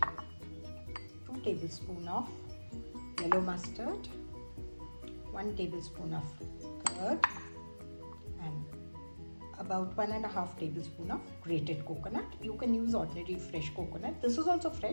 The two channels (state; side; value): inverted; both; correlation -1.00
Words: 2 tablespoons of yellow mustard, 1 tablespoon of curd, and about 1.5 tablespoons of grated coconut. You can use ordinary fresh coconut. This is also